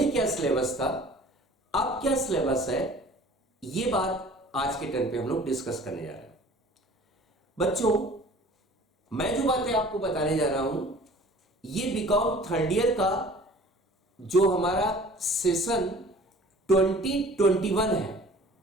क्या सिलेबस था, अब क्या सिलेबस है, ये बात आज के टर्न पे हम लोग डिस्कस करने जा रहे हैं। बच्चों, मैं जो बातें आपको बताने जा रहा हूं, ये बीकॉम थर्ड ईयर का जो हमारा सेशन 2021 है,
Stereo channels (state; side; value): normal; both; correlation 0.48